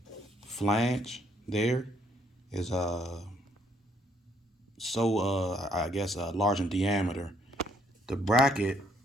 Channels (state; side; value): normal; both; correlation 0.68